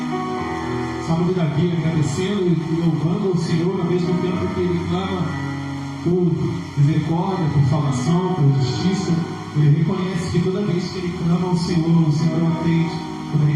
Salmo de Davi, agradecendo e louvando ao Senhor ao mesmo tempo que ele clama por misericórdia, por salvação, por justiça. Ele reconhece que toda vez que ele clama ao Senhor, o Senhor o atende. Quando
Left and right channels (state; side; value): identical; both; correlation 1.00